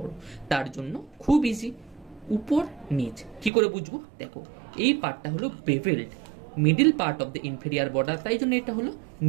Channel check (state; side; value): drops out; left; at 3.5 s